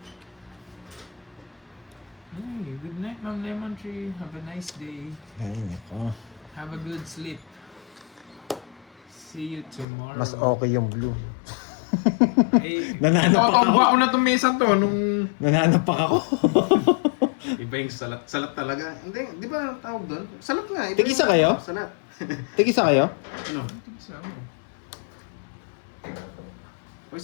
Hey, good night, Ma'am Lemon Tree. Have a nice day. Ay, nako. Have a good sleep. See you tomorrow. Mas okay yung blue. Eh, Nananapak nakatamba ko na itong mesa to nung... Nananapak ako. Iba yung salat. Salat talaga. Hindi, di ba tawag doon? Salat nga. Iba Tig-isa yung kayo? Salat. Tig-isa kayo? Ano? Isa mo. O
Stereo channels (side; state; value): right; drops out; at 9.9 s